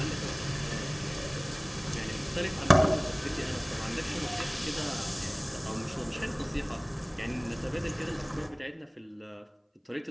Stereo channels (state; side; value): identical; both; correlation 1.00